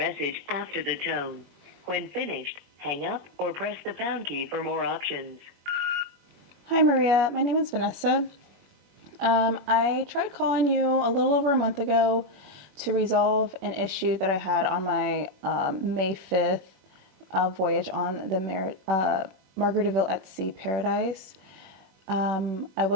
after the tone. When finished, hang up or press the pound key for more options. Hi, Maria. My name is Vanessa. I tried calling you a little over a month ago to resolve an issue that I had on my May 5th voyage on the Margaritaville at Sea Paradise. I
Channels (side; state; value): left; late; 21 ms